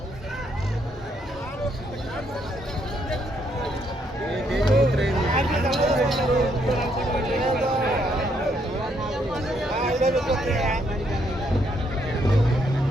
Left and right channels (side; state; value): both; normal; correlation 0.73